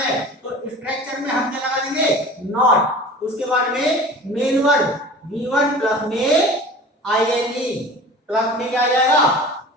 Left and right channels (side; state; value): both; normal; correlation 0.40